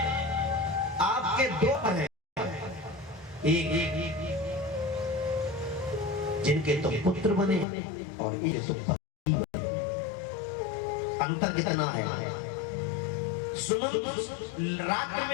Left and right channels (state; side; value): drops out; right; at 7.7 s